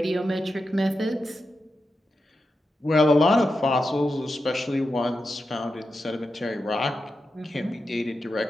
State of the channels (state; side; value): normal; both; correlation 0.89